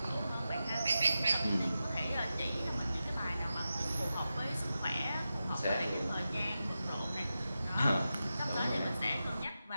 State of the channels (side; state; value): both; inverted; correlation -0.91